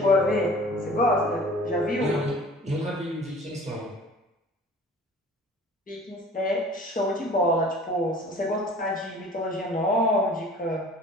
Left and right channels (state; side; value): normal; both; correlation 0.46